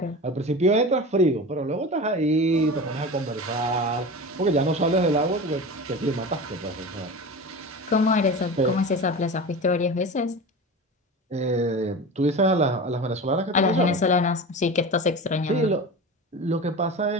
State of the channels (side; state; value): both; normal; correlation 0.30